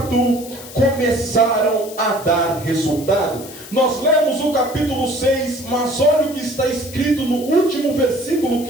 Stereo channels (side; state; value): left; noise; hiss, 15 dB below the sound